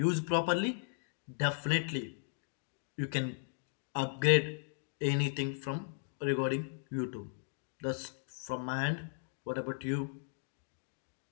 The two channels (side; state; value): right; silent; digital silence